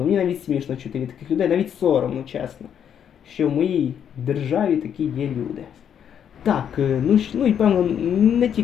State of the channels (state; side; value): quieter; right; 8.7 dB